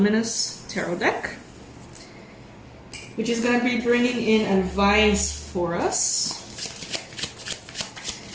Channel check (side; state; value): both; identical; correlation 1.00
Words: tarot deck, which is going to be bringing in advice for us.